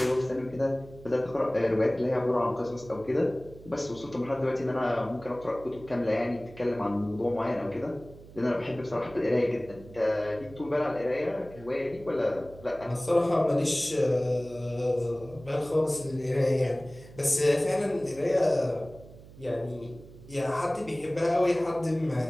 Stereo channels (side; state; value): right; noise; hum, 19 dB below the sound